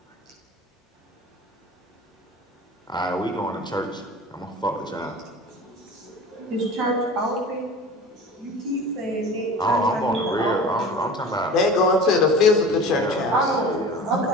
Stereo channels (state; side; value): normal; both; correlation 0.37